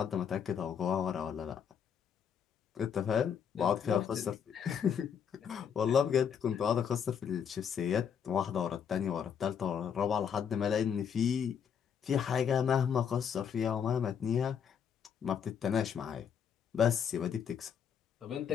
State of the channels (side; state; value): right; quieter; 7.7 dB